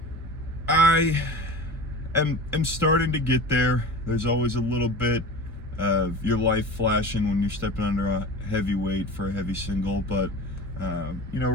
I am starting to get there. There's always a little bit of your life flashing when you're stepping under a heavy weight for a heavy single, but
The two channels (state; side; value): normal; both; correlation 0.34